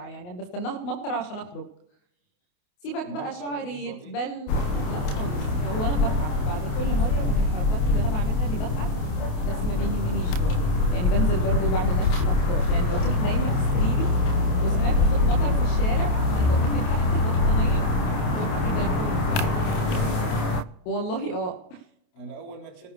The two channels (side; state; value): right; late; 28 ms